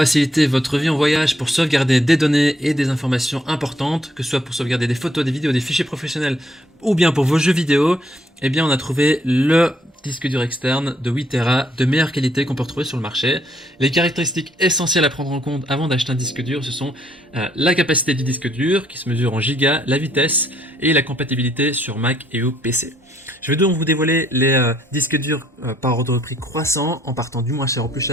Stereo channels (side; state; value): both; normal; correlation 0.69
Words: votre vie en voyage, pour sauvegarder des données et des informations importantes, que ce soit pour sauvegarder des photos, des vidéos, des fichiers professionnels ou bien pour vos jeux vidéo. Eh bien, on a trouvé le disque dur externe de 8 Tera de meilleure qualité qu'on peut retrouver sur le marché. Les caractéristiques essentielles à prendre en compte avant d'acheter un disque dur, ce sont la capacité du disque dur qui se mesure en gigas, la vitesse et la compatibilité sur Mac et au PC. Je vais donc vous dévoiler les disques durs par ordre de prix croissant en partant du moins cher au plus